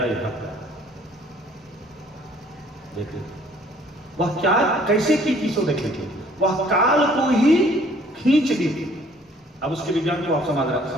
ये भक्त है। देखिए वह क्या कैसे की चीजों देखे थे, वह काल को ही खींच दी थी। अब उसके विज्ञान को आप समझ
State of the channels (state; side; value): normal; both; correlation 0.58